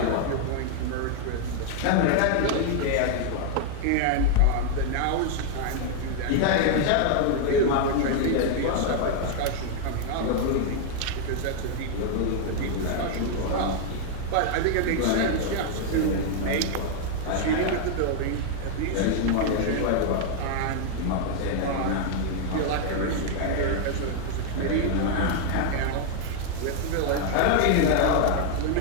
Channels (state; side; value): different; both; correlation 0.00